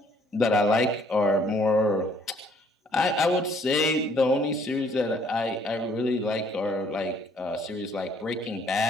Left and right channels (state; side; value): normal; both; correlation 0.63